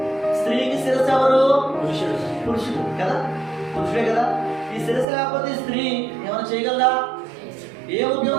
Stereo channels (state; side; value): drops out; left; at 5.1 s